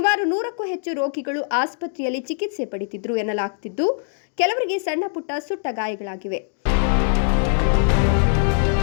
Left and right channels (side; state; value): right; silent; digital silence